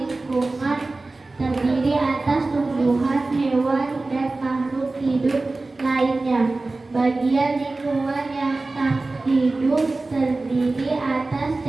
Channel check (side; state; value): left; quieter; 3.3 dB